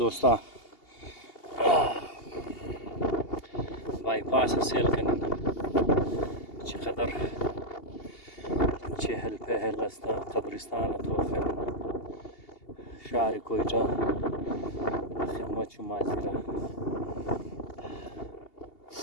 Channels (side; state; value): right; late; 2.8 ms